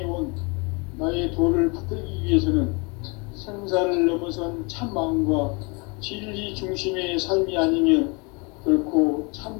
온 나의 도를 붙들기 위해서는 생사를 넘어선 참 마음과 진리 중심의 삶이 아니면 결코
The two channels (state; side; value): quieter; right; 30.4 dB